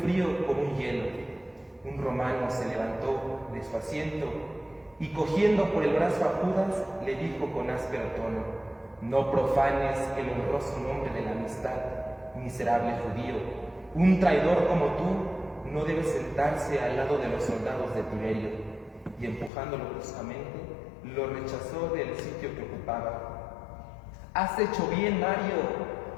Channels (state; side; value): drops out; right; at 19.5 s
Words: como un hielo. Un romano se levantó de su asiento y cogiendo por el brazo a Judas, le dijo con áspero tono: No profanes el honroso nombre de la amistad, miserable judío. Un traidor como tú no debe sentarse al lado de los soldados de Tiberio. Y empujándolo bruscamente, lo rechazó del sitio que ocupaba. Has hecho bien, Mario,